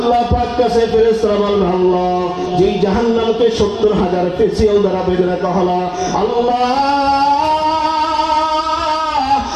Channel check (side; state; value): both; identical; correlation 1.00